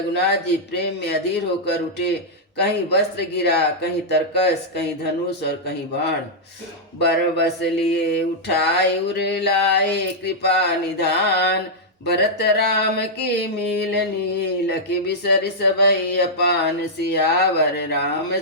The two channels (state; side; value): normal; both; correlation -0.07